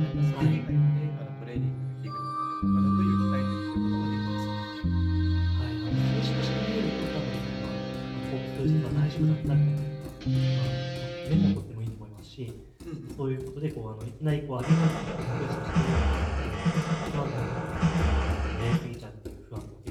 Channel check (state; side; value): identical; both; correlation 1.00